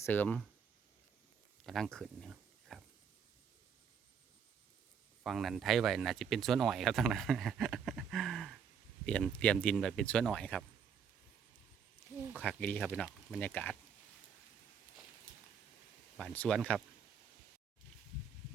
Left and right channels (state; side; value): quieter; left; 7.2 dB